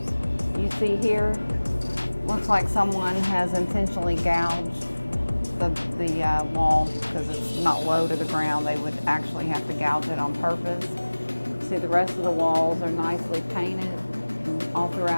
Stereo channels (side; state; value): both; inverted; correlation -1.00